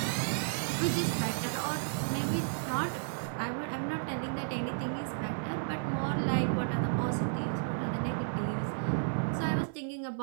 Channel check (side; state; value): left; silent; 56 dB below the other